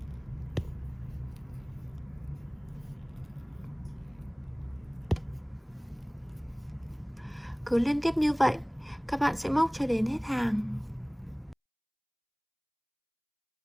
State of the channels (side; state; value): both; identical; correlation 1.00